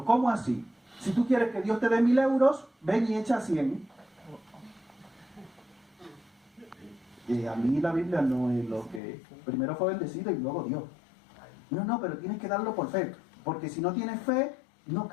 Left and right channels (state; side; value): drops out; right; at 9.0 s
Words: ¿cómo así? Si tú quieres que Dios te dé 1.000 euros, ven y echa 100. Y a mí la Biblia no es lo que... Primero fue bendecido y luego Dios. No, pero tienes que darlo por fe. Porque si no tienes fe, no